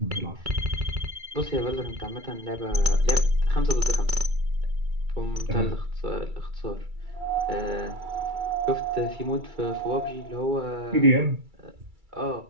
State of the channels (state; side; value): late; left; 2.3 ms